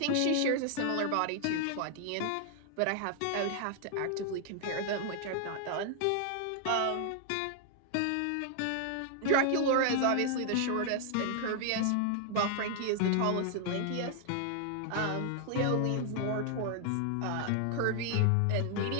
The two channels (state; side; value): different; both; correlation 0.00